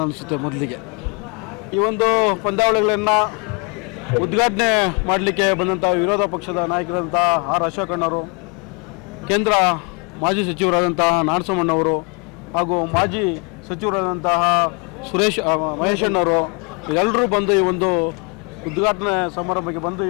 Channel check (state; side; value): quieter; right; 34.1 dB